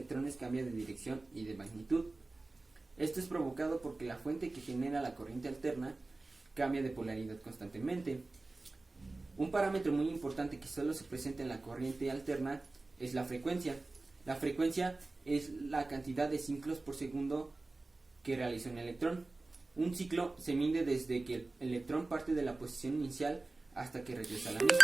cambia de dirección y de magnitud. Esto es provocado porque la fuente que genera la corriente alterna cambia de polaridad constantemente. Un parámetro muy importante que solo se presenta en la corriente alterna es la frecuencia. La frecuencia es la cantidad de ciclos por segundo que realiza un electrón. Un ciclo se mide desde que el electrón parte de la posición inicial hasta que regresa a la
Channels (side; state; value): left; quieter; 3.2 dB